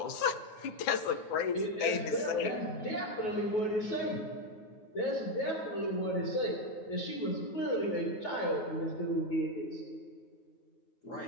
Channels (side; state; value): right; late; 9.4 ms